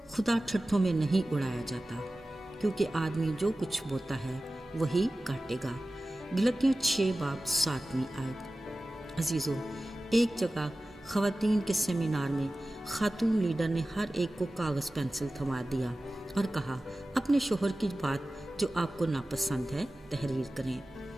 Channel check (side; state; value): both; normal; correlation 0.96